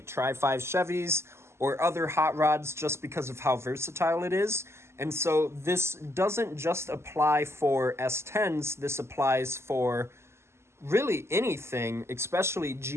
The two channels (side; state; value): left; late; 0.13 ms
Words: Tri-5 Chevys or other hot rods just because of how versatile it is. And so this doesn't just apply for S10s, this applies for really anything, especially